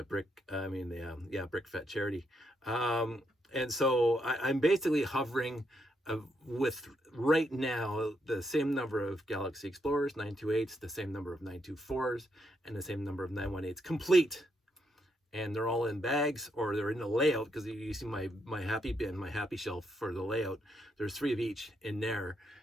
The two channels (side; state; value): both; normal; correlation 0.79